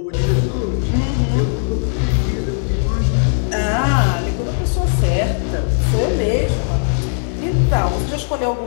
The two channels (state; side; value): silent; right; digital silence